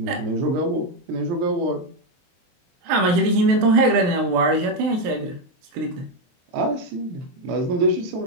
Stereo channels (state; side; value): late; left; 23 ms